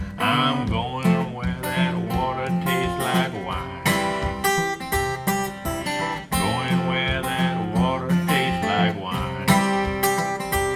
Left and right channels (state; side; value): identical; both; correlation 1.00